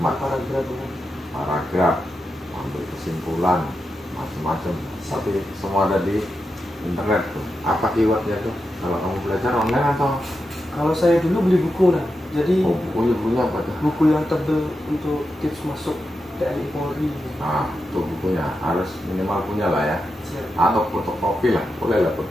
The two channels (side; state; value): both; normal; correlation 0.88